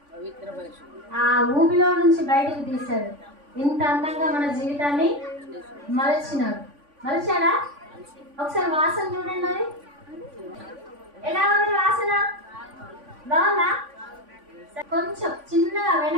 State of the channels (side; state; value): left; late; 3.5 ms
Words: ఆ ఊబిలో నుంచి బయటకు తీశాడు. ఇంత అందంగా మన జీవితాన్ని మలచినాడు. మలిచాడా? ఒకసారి వాసన చూడండి. అది ఎలా ఉంది వాసన? బాగుందా? కొంచెం చిన్నగా